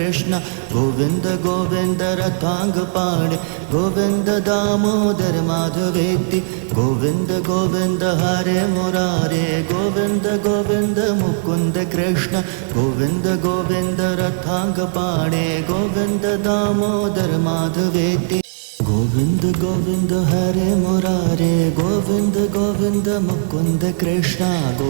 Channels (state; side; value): silent; left; digital silence